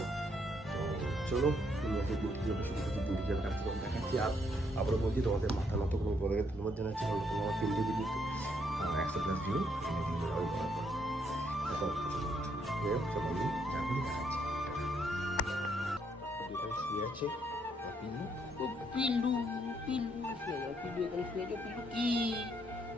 তো চলো, তুমি একটা ডিউটি যাবে, শুধু শুধু ডিউটি যাবে কাজ করে দেখাচ্ছি। আর আবারও বলছি, তোমাদের মাথা নত কোনো বলে ধন্যবাদ জানাচ্ছি, কারণ তোমরা আমার 3টে ভিডিওতে 100+ ভিউ এনে কিন্তু আরও করার পর এখন চলো আমি এখন দেখাচ্ছি। যেখানে শুয়ে আছে পিলু, ও পিলু পিলু শুয়ে যাও, পিলু এখানে শুয়ে যাও। পিলু কি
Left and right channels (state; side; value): normal; both; correlation 0.72